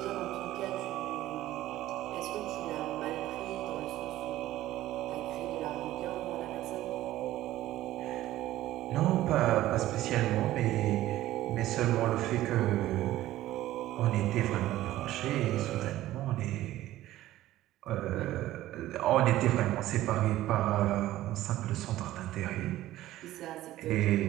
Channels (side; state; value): left; quieter; 14.9 dB